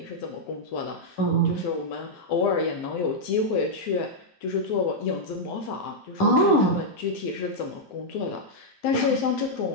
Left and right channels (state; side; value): late; right; 10 ms